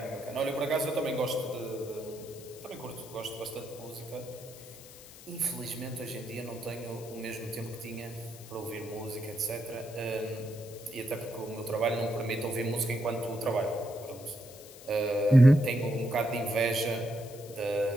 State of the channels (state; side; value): noise; left; hiss, 18 dB below the sound